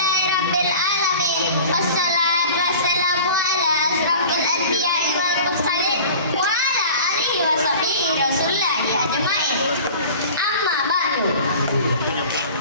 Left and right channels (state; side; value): inverted; both; correlation -0.42